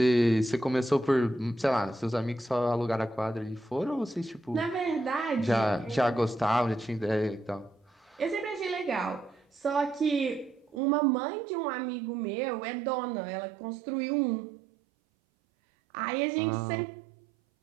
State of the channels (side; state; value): left; drops out; at 10.8 s